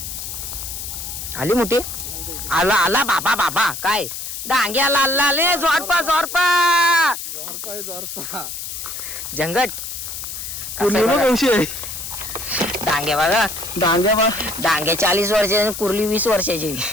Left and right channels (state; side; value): noise; left; hiss, 7 dB below the sound